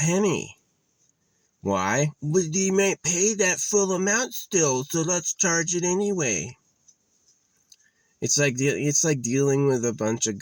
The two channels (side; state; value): both; identical; correlation 1.00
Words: Why? Well, you might pay that full amount still, so let's charge it anyway. It's like dealing with a bunch of